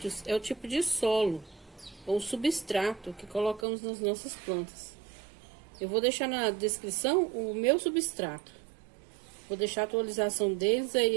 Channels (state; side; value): drops out; left; at 3.7 s